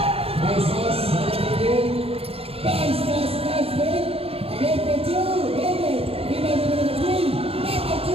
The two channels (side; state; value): left; late; 0.28 ms